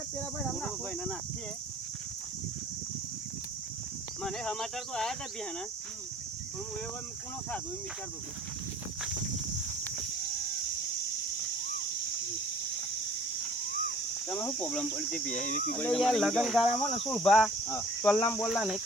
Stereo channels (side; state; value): both; normal; correlation 0.51